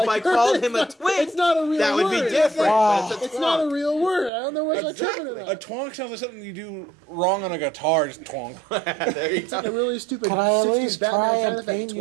if I called him a twink, It's not a real that would word. be different. Wow. But It's not a real word. I don't know what's Exactly. exactly. A twonk sounds like something you do wrong on a guitar. Just twonk. There you It's like go. a really stupid. Can I at 60s least Batman try sound and effect paint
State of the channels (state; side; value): drops out; left; at 4.3 s